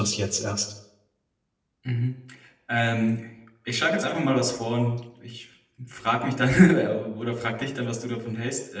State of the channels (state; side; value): identical; both; correlation 1.00